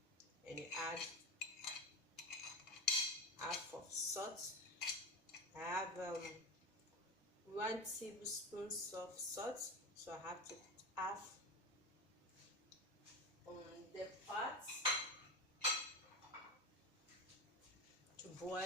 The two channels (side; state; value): both; normal; correlation 0.23